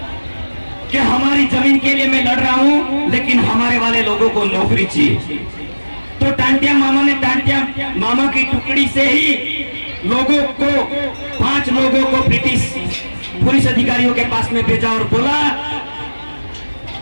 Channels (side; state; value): both; inverted; correlation -1.00